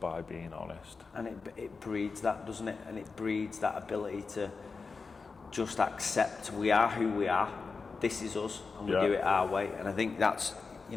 being honest. And it breeds that, doesn't it? And it breeds that ability to just accept we are who we are. This is us, and we do it our way. And I think that's, you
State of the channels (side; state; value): right; quieter; 4.6 dB